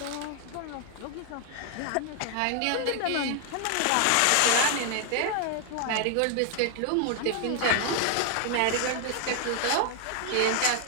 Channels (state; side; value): different; both; correlation 0.00